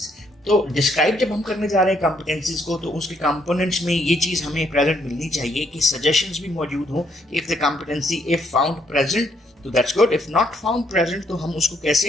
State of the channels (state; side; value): normal; both; correlation 0.71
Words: तो डिस्क्राइब जब हम करने जा रहे हैं कॉम्पिटेंसीज को तो उसके कंपोनेंट्स में ये चीज़ हमें प्रेजेंट मिलनी चाहिए कि सजेशंस भी मौजूद हों. If the competency if found present तो that's good, if not found present तो हम उसको